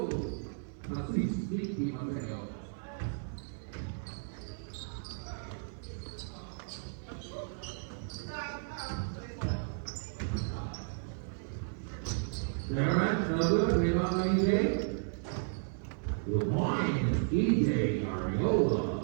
Nasib, Mickey Mateo. Darren, Douglas, Raymond, EJ. Good morning, EJ Ariola.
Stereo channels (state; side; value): silent; left; 55 dB below the other